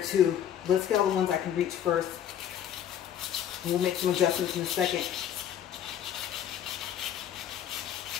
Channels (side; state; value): right; quieter; 10.0 dB